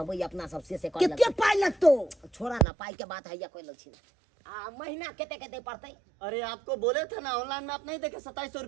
अपना सबसे से कर कितने पाई लगतो? छोड़ा ना, पाई के बात है या कोई लक्षण महीना केते पड़ते? अरे आपको बोले थे ना ऑनलाइन में, आप नहीं देखे 2700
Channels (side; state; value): left; drops out; at 2.7 s